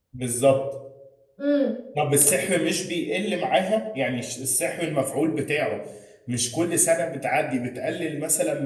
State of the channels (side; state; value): both; identical; correlation 1.00